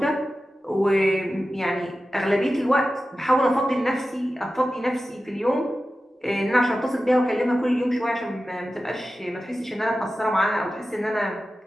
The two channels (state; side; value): normal; both; correlation 0.94